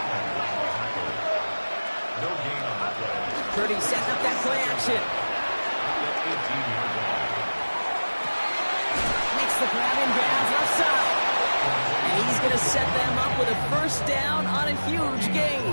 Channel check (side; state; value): both; inverted; correlation -1.00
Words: No gain on the play. Purdy setting up that play action. 18-yard line. Makes the grab in bounds left side. And he's going to set them up with a 1st down on a huge gain.